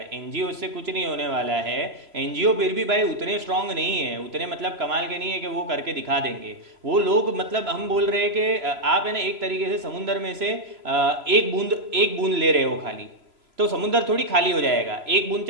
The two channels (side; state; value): left; late; 3.0 ms